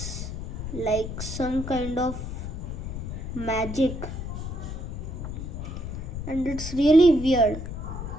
like some kind of magic, and it's really weird.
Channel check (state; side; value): noise; left; rumble, 6 dB below the sound